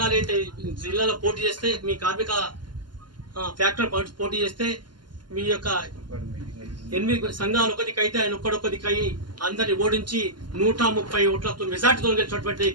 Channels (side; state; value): left; late; 0.71 ms